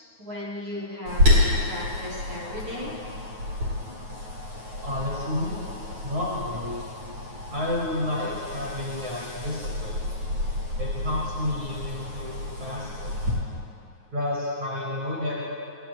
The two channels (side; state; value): left; late; 9.4 ms